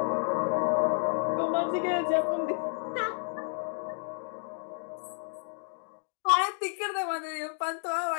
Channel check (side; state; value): right; silent; digital silence